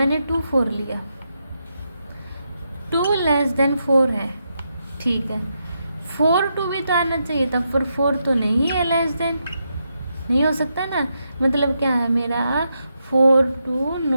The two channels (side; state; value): both; inverted; correlation -0.83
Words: 2 4 लिया, 2 लेस देन 4 है। ठीक है, 4 2 भी तो आना चाहिए था, पर 4 तो नहीं है, लेस देन नहीं हो सकता ना, मतलब क्या है मेरा 4 2